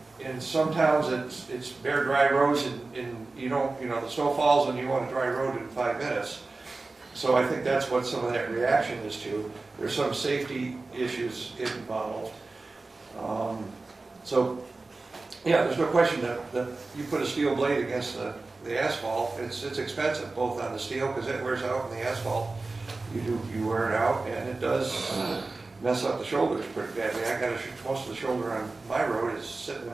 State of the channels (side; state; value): left; quieter; 3.5 dB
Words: in some towns it's bare, dry roads, and the snow falls and you want a dry road in 5 minutes. So I think that's what some of that reaction is to. There's some safety issues involved. There's no question that you put a steel blade against the asphalt, it's expensive, both on the steel, because it wears out, and the asphalt, you wear it out, and it does mess up the shoulders pretty badly. I got most of the shoulder on my road is sitting in